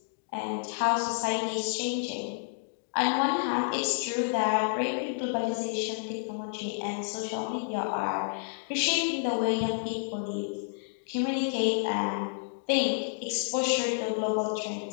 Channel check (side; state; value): right; silent; digital silence